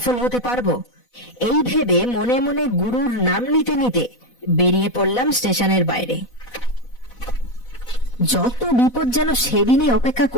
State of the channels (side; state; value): right; late; 4.1 ms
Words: হতে পারবো। এই ভেবে মনে মনে গুরুর নাম নিতে নিতে বেরিয়ে পড়লাম স্টেশনের বাইরে। যত বিপদ যেন সেদিনই অপেক্ষা